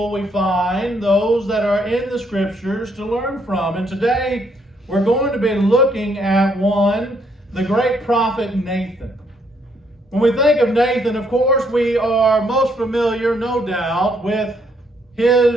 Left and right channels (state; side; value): normal; both; correlation 0.71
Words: we find, those that are in the Scriptures to learn from. And today we're going to be looking at one, the great prophet Nathan. When we think of Nathan, of course, we are most familiar, no doubt, with